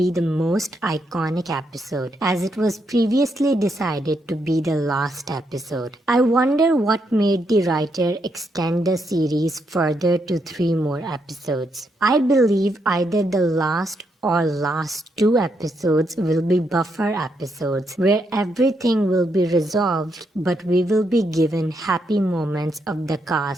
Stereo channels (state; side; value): normal; both; correlation 0.79